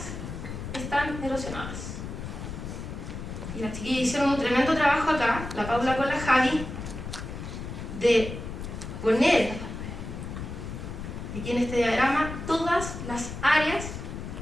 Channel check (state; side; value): noise; left; rumble, 8 dB below the sound